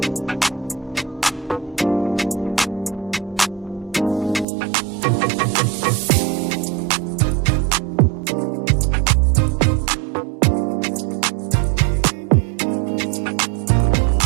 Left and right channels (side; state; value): left; drops out; at 4.5 s